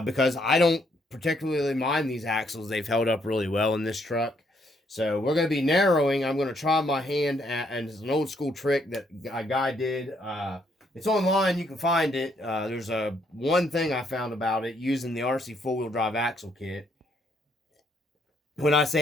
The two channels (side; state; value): both; normal; correlation 0.71